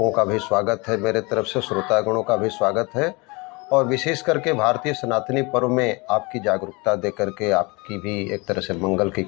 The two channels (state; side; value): quieter; right; 27.0 dB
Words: का भी स्वागत है, मेरे तरफ से श्रोतागणों का भी स्वागत है। और विशेष करके भारतीय सनातनी पर्व में आपकी जागरूकता दे करके आपकी भी एक तरह से मंगल की